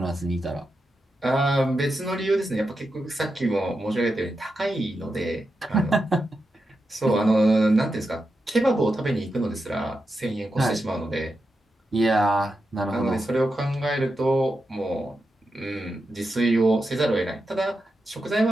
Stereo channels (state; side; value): normal; both; correlation 0.88